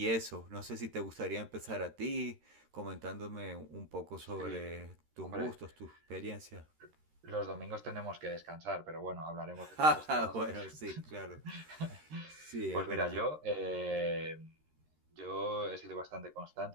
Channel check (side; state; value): left; late; 13 ms